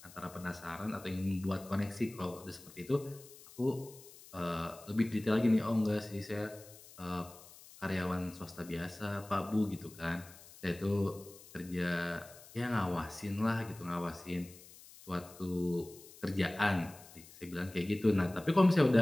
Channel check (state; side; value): noise; left; hiss, 20 dB below the sound